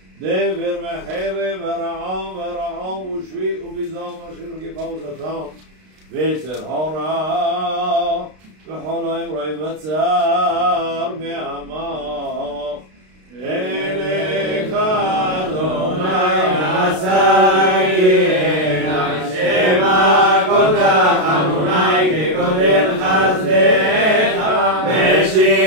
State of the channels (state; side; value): late; left; 32 ms